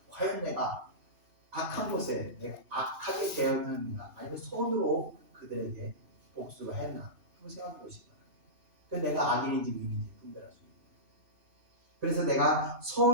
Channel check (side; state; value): left; late; 2.9 ms